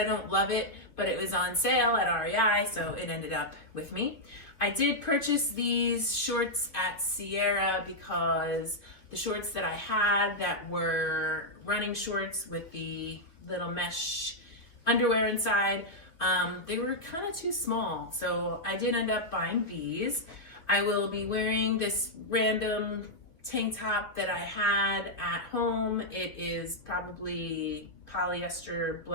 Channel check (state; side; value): late; right; 2.7 ms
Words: don't love it, but it was on sale at REI, so it ended up with me. I did purchase these shorts at Sierra because the shorts that I had that were running shorts with the little mesh underwear inside, they were kind of too small, so I did end up buying these. I will be wearing this random tank top that I had at home. It is probably polyester